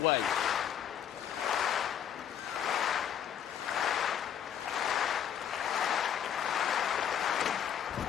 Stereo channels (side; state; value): right; quieter; 9.2 dB